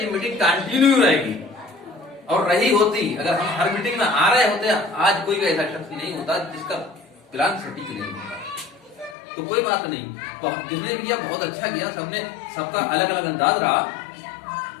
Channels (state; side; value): drops out; right; at 9.2 s